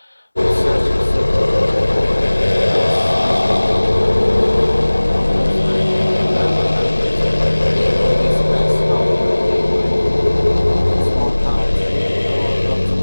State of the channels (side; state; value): both; inverted; correlation -1.00